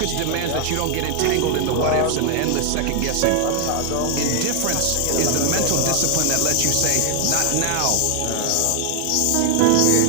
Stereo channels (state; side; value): different; both; correlation 0.00